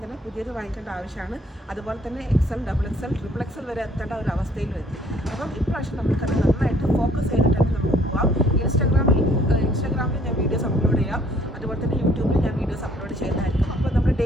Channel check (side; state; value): both; normal; correlation 0.60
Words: തന്നെ പുതിയത് വാങ്ങിക്കേണ്ട ആവശ്യമാണ്. അതുപോലെ തന്നെ XL, XXL, XXL വരെ എത്തേണ്ട ഒരു അവസ്ഥയിൽ എത്തി. അപ്പം ഇപ്രാവശ്യം നമുക്കത് നന്നായിട്ട് ഫോക്കസ് ചെയ്തിട്ട് നമുക്ക് പോകാം. ഇൻസ്റ്റാഗ്രാമിൽ ഞാൻ വീഡിയോസ് അപ്ലോഡ് ചെയ്യാം. അതുപോലെ തന്നെ യൂട്യൂബിൽ ഞാൻ വീഡിയോസ് അപ്ലോഡ് ചെയ്യുന്നതായിരിക്കും. അപ്പോൾ നമ്മുടെ